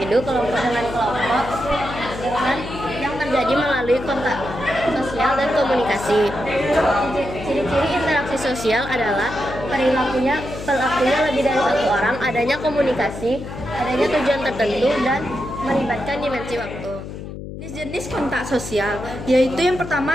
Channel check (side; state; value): left; noise; hum, 10 dB below the sound